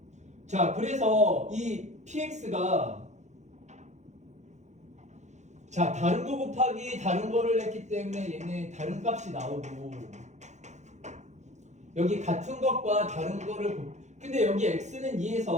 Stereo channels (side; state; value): left; late; 0.34 ms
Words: 자 그래서 이 px가 자 다른 거 곱하기 다른 거를 했기 때문에 얘는 다른 값이 나오고, 여기 같은 것과 다른 거를 근데 여기 x는